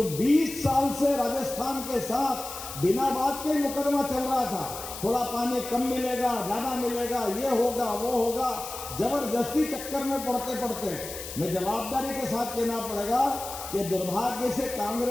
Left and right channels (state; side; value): noise; left; hiss, 10 dB below the sound